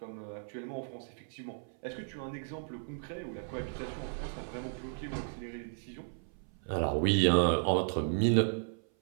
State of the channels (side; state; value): left; silent; 55 dB below the other